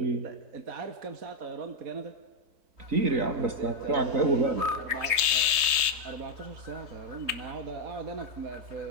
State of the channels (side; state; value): left; late; 3.3 ms